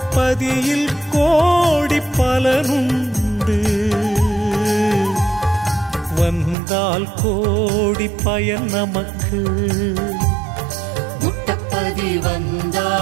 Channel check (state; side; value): drops out; left; at 6.6 s